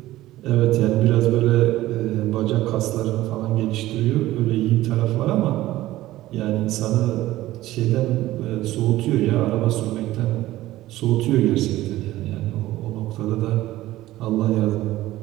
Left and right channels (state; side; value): quieter; left; 15.9 dB